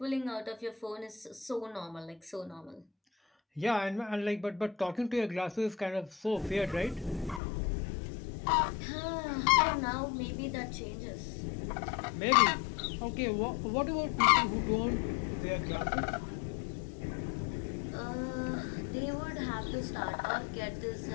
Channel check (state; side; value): drops out; right; at 7.4 s